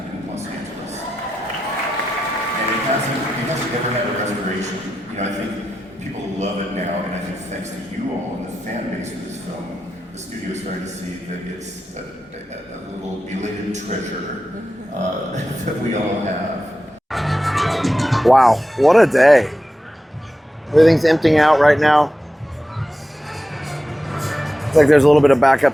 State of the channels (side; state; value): both; normal; correlation 0.90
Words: in Los Angeles. And it hasn't ever had a restoration. I think people love it now, and I think thanks to you all and the fan base of this film, the studio is starting to see that it's a little belated treasure that we all have. Wow, what a day. Everything's emptying out right now. It's like there's a little bit of